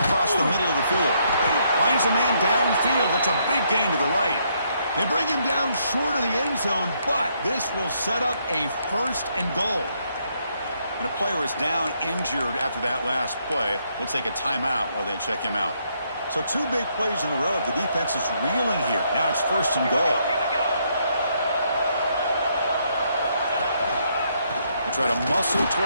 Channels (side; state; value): both; inverted; correlation -0.73